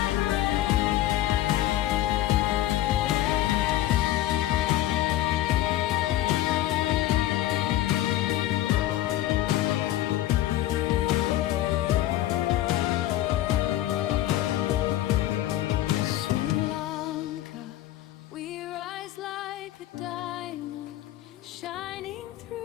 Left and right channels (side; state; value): right; quieter; 14.3 dB